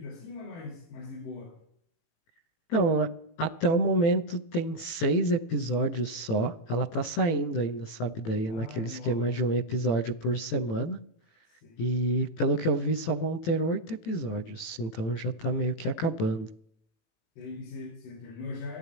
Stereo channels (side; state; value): right; late; 18 ms